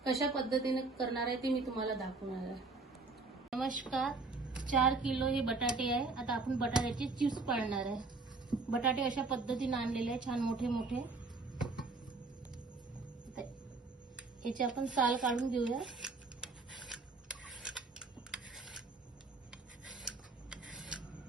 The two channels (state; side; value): quieter; left; 3.8 dB